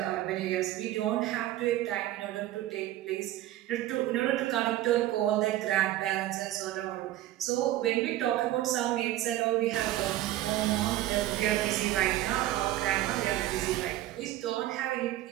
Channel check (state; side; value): quieter; left; 14.5 dB